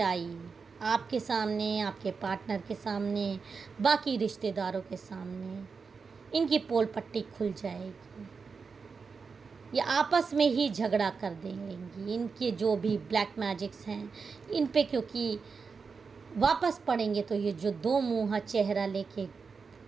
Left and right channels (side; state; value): left; quieter; 5.1 dB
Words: आपके सामने, आपके पार्टनर के सामने, बाकी रिश्तेदारों के सामने इनकी पोल पट्टी खुल जाएगी। ये आपस में ही झगड़ा कर देंगी। इनके जो भी ब्लैक मैजिक्स हैं इन पे क्योंकि वापस पड़ेंगे, तो ये जो 2 मुँहा चेहरा लेके